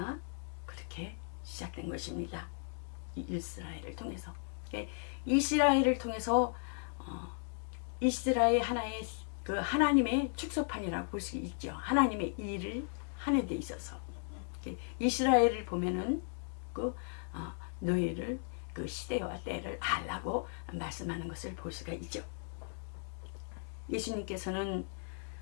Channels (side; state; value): right; silent; 54 dB below the other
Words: 그렇게 시작된 것입니다. 이스라엘을 통해서. 이스라엘을 통해서 이스라엘 하나의 그 하나님의 축소판이라고 볼 수 있죠. 하나님의 일을 하는 데 있어서 이스라엘을 보면은 그 너희를 그 시대와 때를 알라고 말씀하는 것을 볼 수가 있죠. 예수님께서는